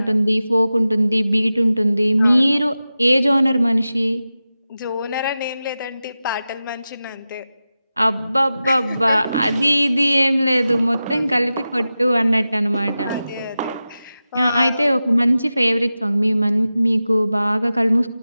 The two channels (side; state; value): both; inverted; correlation -0.93